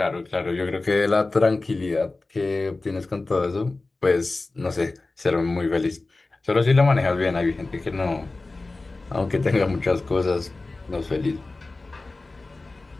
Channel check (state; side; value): quieter; right; 3.3 dB